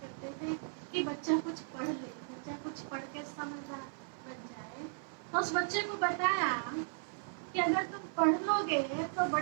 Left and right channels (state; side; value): silent; left; 54 dB below the other